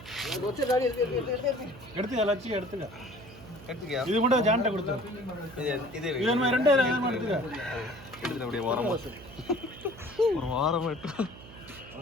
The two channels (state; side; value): noise; right; hum, 17 dB below the sound